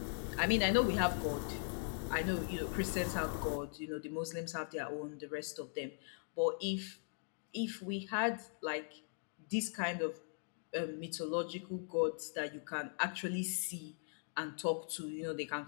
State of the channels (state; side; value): silent; right; digital silence